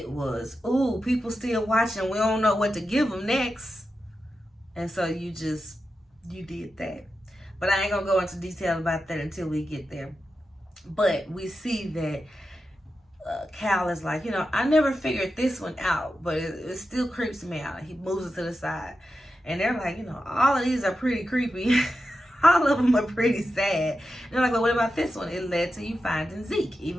was, ooh, people still watching. We don't know what to give them next. And so you did that. But I ain't going to go into detail about that until we get there. But we see that Cal is like, you know, I never figured this one out, but it still creeps me out. He moves it to the side. And they're like, you know, all of these are pretty creepy. All of them are pretty sad. And they're like, well, what about this one? It led to you finding Zeke.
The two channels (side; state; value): both; normal; correlation 0.90